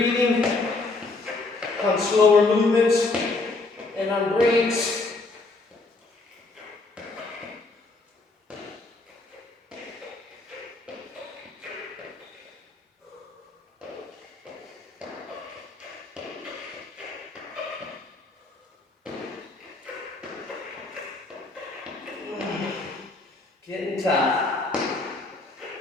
on slower movements and on breaks. Getting tough.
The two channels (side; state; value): right; quieter; 3.4 dB